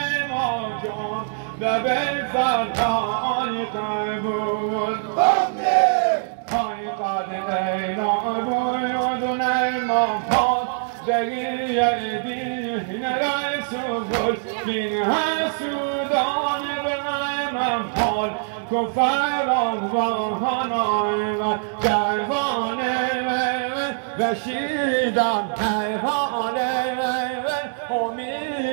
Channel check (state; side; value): silent; left; digital silence